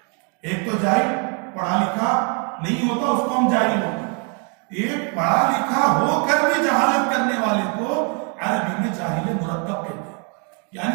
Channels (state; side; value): quieter; left; 37.8 dB